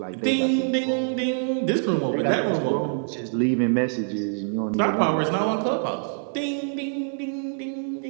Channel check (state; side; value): silent; left; 62 dB below the other